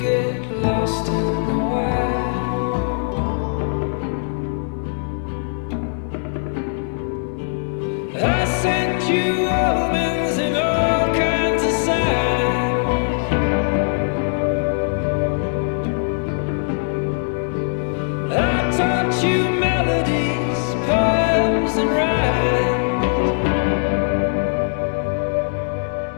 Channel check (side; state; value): right; silent; digital silence